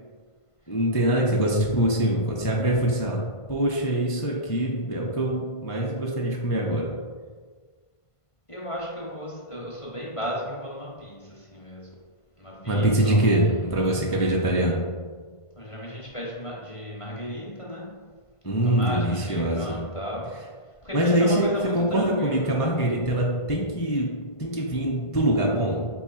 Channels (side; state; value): right; late; 1.5 ms